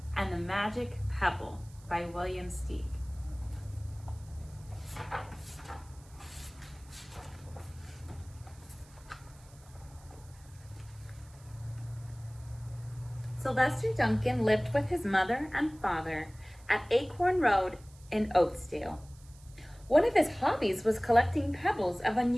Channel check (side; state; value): right; noise; hiss, 26 dB below the sound